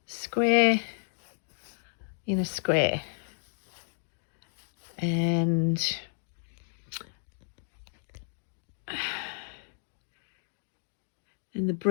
square in a square, and the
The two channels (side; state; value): right; silent; digital silence